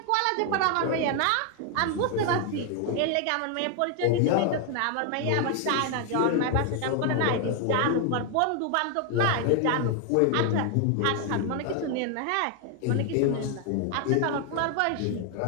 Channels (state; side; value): different; both; correlation 0.01